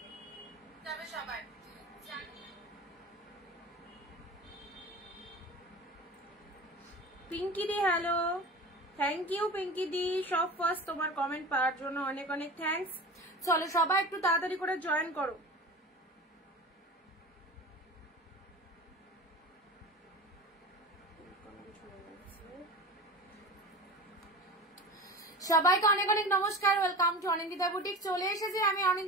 সবাই পিঙ্কি দি হ্যালো, থ্যাংক ইউ পিঙ্কি দি, সব ফার্স্ট তোমার কমেন্ট পাওয়ার জন্য অনেক অনেক থ্যাঙ্কস। চলো সবাই একটু তাড়াতাড়ি করে জয়েন করো। সবাইকে অনেক অনেক নমস্কার, ওয়েলকাম টু অনিন্দিতা বুটিক। চলে এসেছি আমি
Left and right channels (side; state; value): both; normal; correlation 0.33